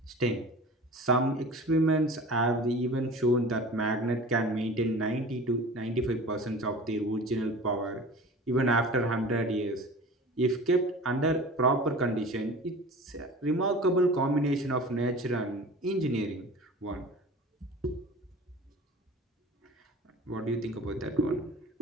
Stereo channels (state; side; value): normal; both; correlation 0.39